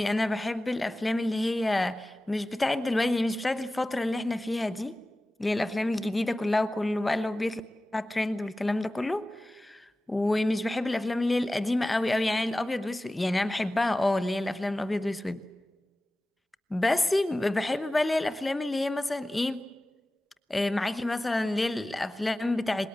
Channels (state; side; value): normal; both; correlation 0.96